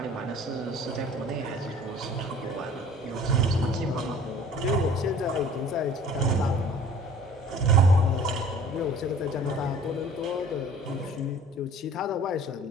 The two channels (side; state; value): both; normal; correlation 0.49